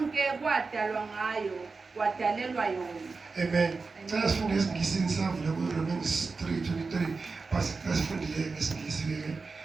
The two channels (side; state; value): left; quieter; 4.3 dB